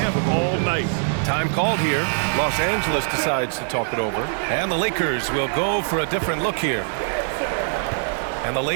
all night. Time called here. Los Angeles decides to talk it over. And the Lakers will go for a different look here. And the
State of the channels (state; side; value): silent; left; digital silence